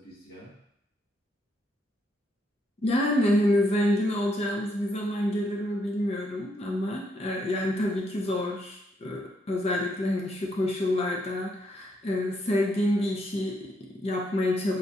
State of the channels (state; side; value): normal; both; correlation 0.76